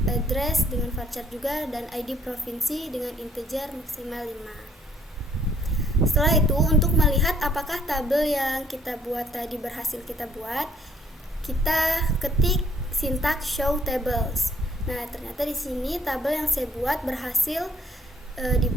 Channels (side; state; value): both; normal; correlation 0.63